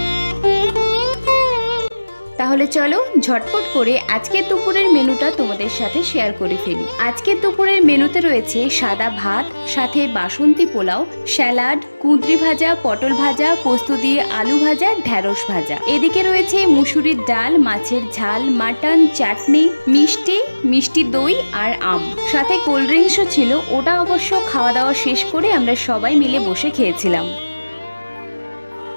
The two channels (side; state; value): both; inverted; correlation -1.00